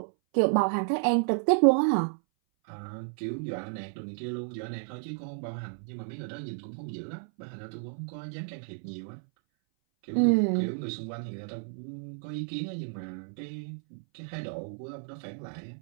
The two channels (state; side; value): silent; left; 57 dB below the other